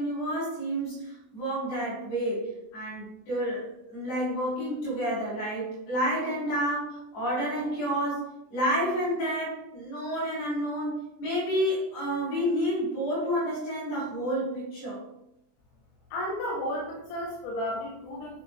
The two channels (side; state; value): right; late; 24 ms